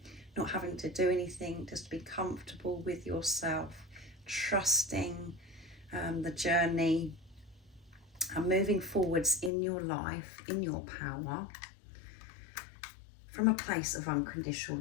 not having to do anything, just to be comfortable with yourself, trusting the journey, and moving forwards in your life, in your power, from a place of unconditional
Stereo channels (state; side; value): drops out; right; at 9.5 s